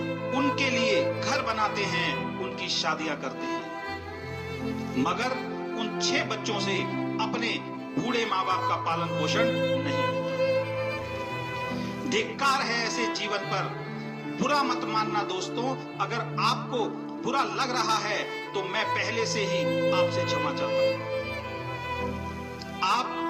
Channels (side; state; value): both; identical; correlation 1.00